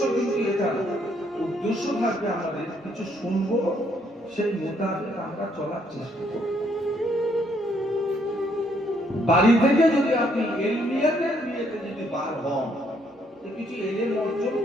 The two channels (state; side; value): normal; both; correlation 0.70